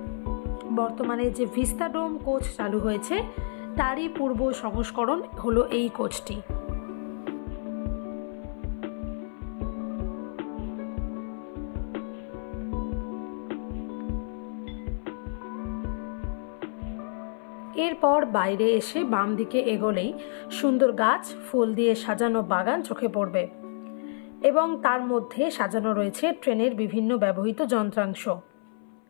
বর্তমানে যে ভিস্তাডোম কোচ চালু হয়েছে, তারই পূর্ব সংস্করণ হলো এই কোচটি। এরপর বাইরে এসে বাম দিকে এগোলেই সুন্দর গাছ ফুল দিয়ে সাজানো বাগান চোখে পড়বে এবং তার মধ্যে সাজানো রয়েছে ট্রেনের বিভিন্ন ব্যবহৃত যন্ত্রাংশ।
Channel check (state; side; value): silent; right; 57 dB below the other